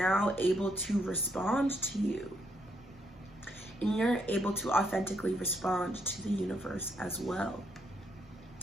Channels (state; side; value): normal; both; correlation 0.75